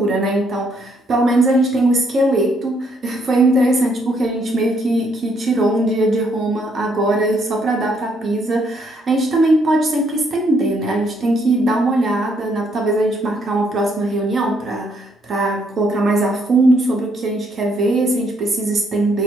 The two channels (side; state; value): both; normal; correlation 0.71